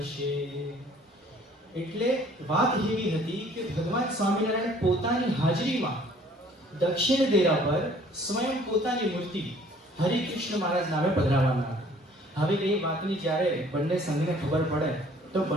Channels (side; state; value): both; normal; correlation 0.56